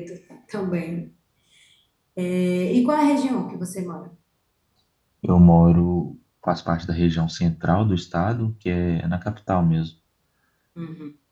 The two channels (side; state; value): both; identical; correlation 1.00